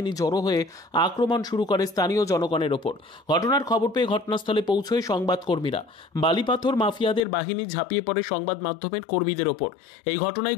জড়ো হয়ে আক্রমণ শুরু করে স্থানীয় জনগণের ওপর। ঘটনার খবর পেয়ে ঘটনাস্থলে পৌঁছয় সংবাদকর্মীরা। বালিপাথর মাফিয়াদের বাহিনী ঝাঁপিয়ে পড়ে সংবাদ মাধ্যমের কর্মীদের ওপর। এই ঘটনায়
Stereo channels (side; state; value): right; drops out; at 7.2 s